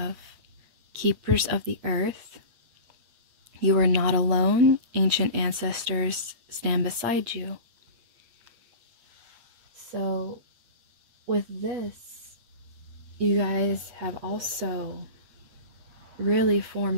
Keepers of the Earth. You are not alone. Ancient ancestors stand beside you. So, with this, you guys have also really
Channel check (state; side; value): late; left; 8.6 ms